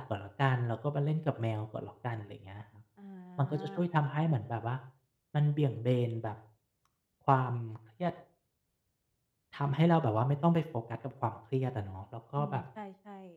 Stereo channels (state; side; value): identical; both; correlation 1.00